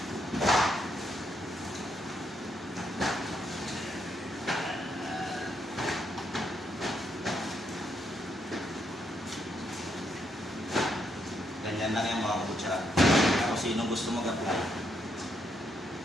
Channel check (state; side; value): normal; both; correlation 0.77